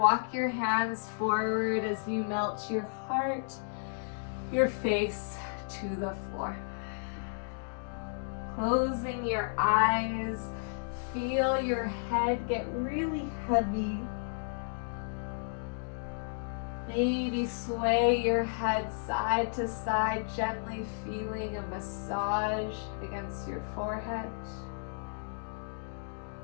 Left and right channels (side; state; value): right; silent; digital silence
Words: your hands forward as you melt your heart, your face to the floor. Closing your eyes, feel your head get really heavy. Maybe sway your head side to side, gently feeling a massage against your forehead.